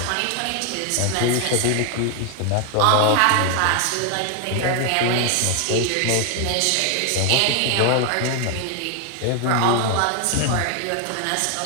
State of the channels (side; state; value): both; different; correlation 0.00